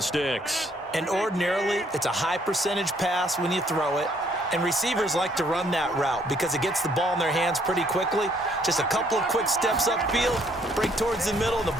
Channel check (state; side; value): normal; both; correlation 0.66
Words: sticks. And ordinarily, it's a high percentage pass when you throw it. And receivers like to run that route because it gets the ball in their hands pretty quickly. Just a couple of quick steps upfield, break towards the middle, the